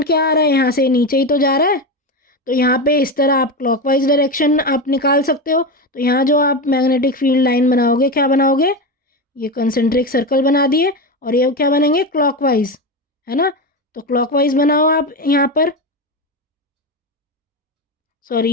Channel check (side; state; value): both; normal; correlation 0.17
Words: क्या आ रहा है, यहाँ से नीचे ही तो जा रहा है। तो यहाँ पे इस तरह आप क्लॉकवाइज डायरेक्शन आप निकाल सकते हो। तो यहाँ जो आप मैग्नेटिक फील्ड लाइन बनाओगे, क्या बनाओगे, ये कंसेंट्रिक सर्कल बना दिए, और ये क्या बनेंगे, क्लॉकवाइज, है ना। तो क्लॉकवाइज बनाओ आप यहाँ पर। सॉरी,